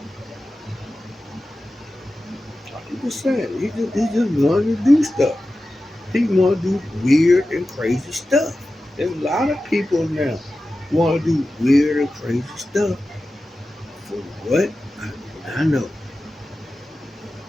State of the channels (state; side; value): normal; both; correlation 0.94